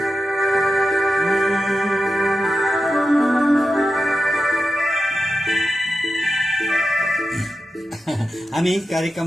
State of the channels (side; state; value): both; normal; correlation 0.90